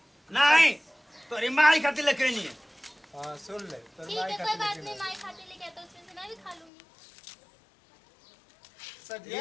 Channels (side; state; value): right; drops out; at 6.7 s